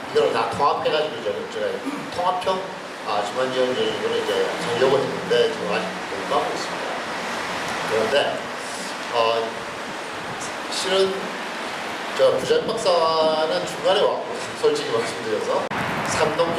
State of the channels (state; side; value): identical; both; correlation 1.00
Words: 이걸 다 통합해가지고 저희가 통합형 지원 지원적으로 이제 하려고 했는데 지금 아직 공부하고 있습니다. 그런데 실은 저 부장 박사는 중간에 왔고 솔직히 말씀드려서 삼동